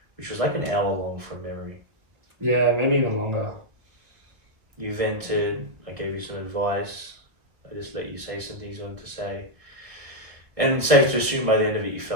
which was like an hour long from memory. Yeah, maybe even longer. You vented, I gave you some advice, I just let you say some things you wanted to say. And safe to assume by the end of it, you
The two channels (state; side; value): late; left; 1.3 ms